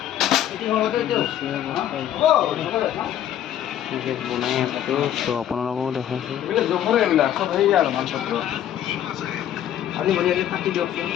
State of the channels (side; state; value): right; quieter; 11.0 dB